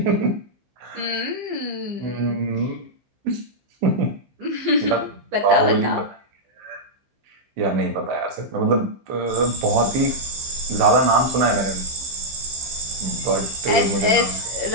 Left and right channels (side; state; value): left; late; 15 ms